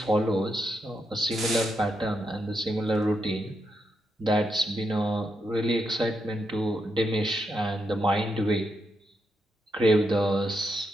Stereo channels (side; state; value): both; normal; correlation 0.82